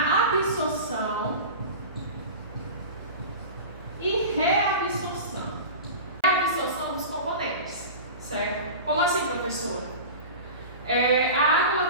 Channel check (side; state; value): both; inverted; correlation -0.32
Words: absorção e reabsorção. Reabsorção dos componentes, certo? Como assim, professora? A água ela